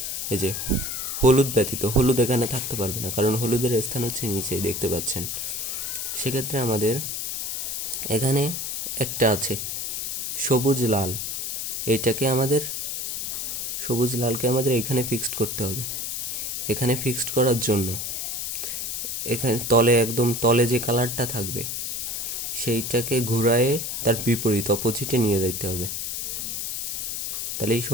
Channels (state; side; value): noise; left; hiss, 3 dB below the sound